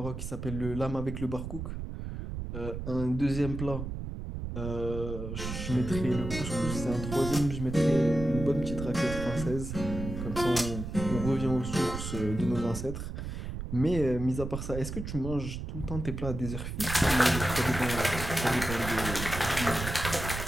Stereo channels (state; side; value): noise; right; rumble, 6 dB below the sound